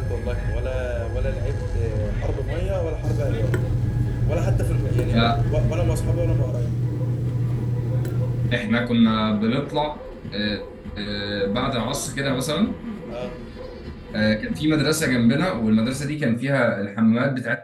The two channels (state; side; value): identical; both; correlation 1.00